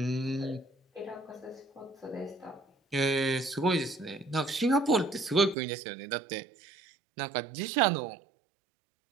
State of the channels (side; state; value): left; drops out; at 5.6 s